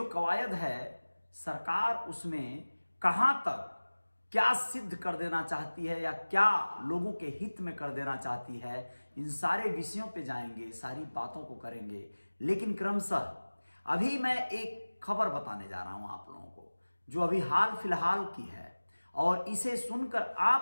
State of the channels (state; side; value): inverted; both; correlation -1.00